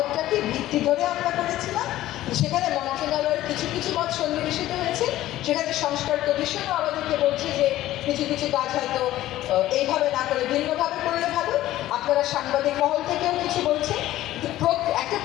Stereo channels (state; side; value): quieter; right; 14.7 dB